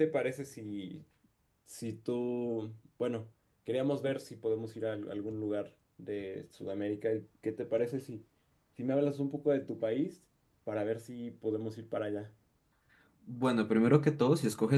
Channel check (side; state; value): both; identical; correlation 1.00